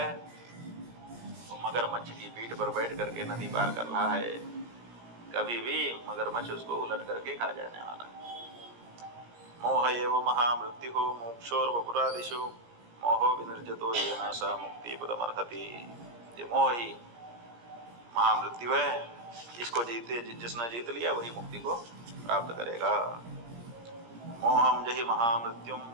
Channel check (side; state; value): left; late; 17 ms